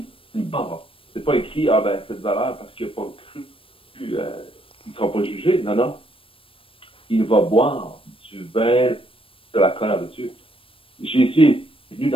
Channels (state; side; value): late; right; 0.26 ms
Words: boira. C'est pas écrit, cette valeur parce qu'il n'a pas cru, il ne sera pas jugé. Non, non. Il va boire du vin de la colère de Dieu. Jésus est venu